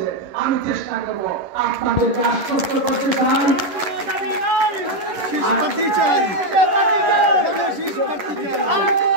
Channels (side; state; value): left; late; 11 ms